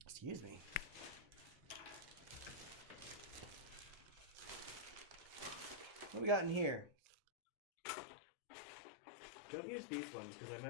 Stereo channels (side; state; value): right; drops out; at 7.2 s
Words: Excuse me. What we got in here? Don't use these ones because I